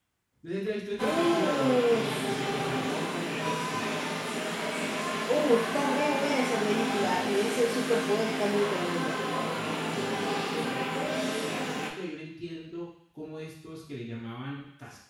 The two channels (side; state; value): both; identical; correlation 1.00